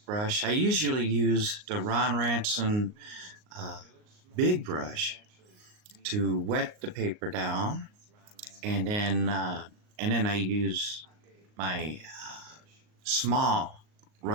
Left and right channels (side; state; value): left; late; 38 ms